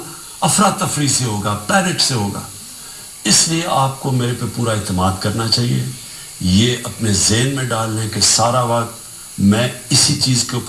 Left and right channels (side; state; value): both; identical; correlation 1.00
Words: افراتفری سے ہوگا، پینک سے ہوگا. اس لیے آپ کو میرے پہ پورا اعتماد کرنا چاہیے. یہ اپنے ذہن میں ڈال لیں کہ سارا وقت میں اسی چیز کے